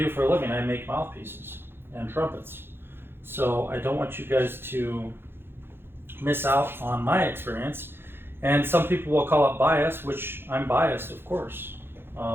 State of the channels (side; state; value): left; late; 0.11 ms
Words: for a living. I make mouthpieces and trumpets. So I don't want you guys to miss out on my experience. And some people will call it bias, which I'm biased, of course,